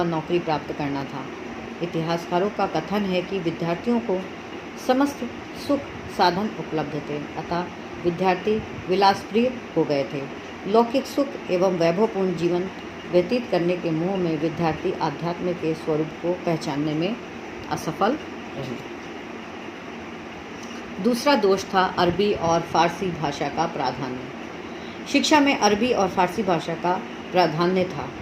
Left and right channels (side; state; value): both; identical; correlation 1.00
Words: नौकरी प्राप्त करना था। इतिहासकारों का कथन है कि विद्यार्थियों को समस्त सुख साधन उपलब्ध थे, अतः विद्यार्थी विलासप्रिय हो गए थे। लौकिक सुख एवं वैभवपूर्ण जीवन व्यतीत करने के मोह में विद्यार्थी आध्यात्म के स्वरूप को पहचानने में असफल रहे। दूसरा दोष था अरबी और फारसी भाषा का प्राधान्य। शिक्षा में अरबी और फारसी भाषा का प्राधान्य था,